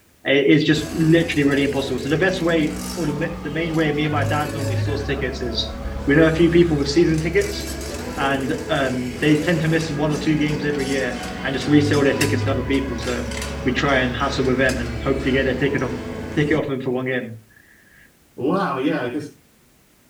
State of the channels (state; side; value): identical; both; correlation 1.00